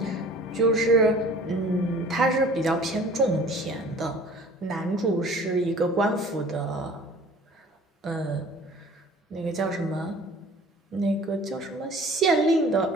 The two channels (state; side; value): normal; both; correlation 0.47